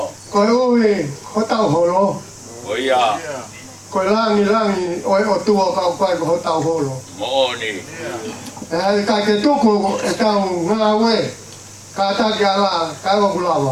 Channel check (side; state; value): both; identical; correlation 1.00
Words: koe ui, ho tau holo. Oia. Koe langi, oe o tua kau koe ko ho tau holo. Oni. E hai kai ke tuku e tau ngā ue, ka taki ala, ka ewa